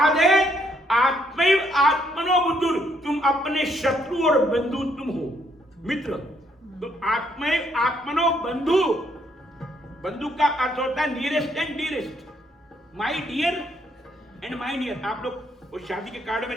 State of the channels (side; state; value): both; normal; correlation 0.70